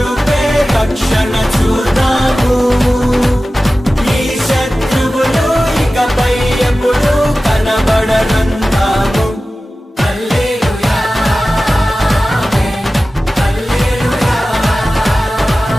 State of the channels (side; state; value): both; normal; correlation 0.95